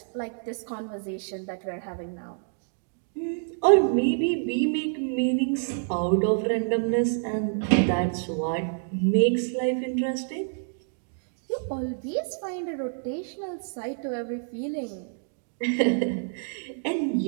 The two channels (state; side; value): silent; left; digital silence